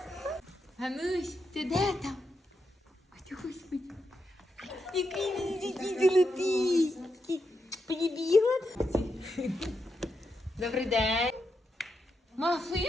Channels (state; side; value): normal; both; correlation 0.84